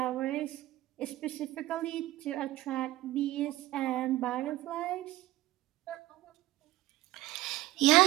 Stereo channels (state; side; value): quieter; left; 16.3 dB